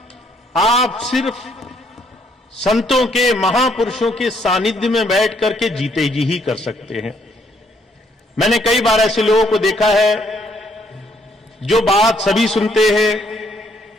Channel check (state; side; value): normal; both; correlation 0.69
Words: आप सिर्फ संतों के, महापुरुषों के सानिध्य में बैठ करके जीते जी ही कर सकते हैं। मैंने कई बार ऐसे लोगों को देखा है जो बात सभी सुनते हैं,